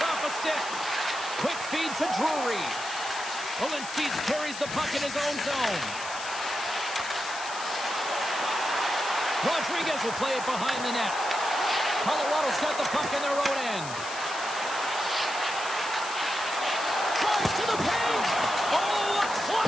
off a stick. Quick feed to Drury. Olinsky carries the puck in his own zone. Rodriguez will play it behind the net. Colorado's got the puck in their own end. Tries to the paint. Oh, a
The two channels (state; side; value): noise; left; hiss, 11 dB below the sound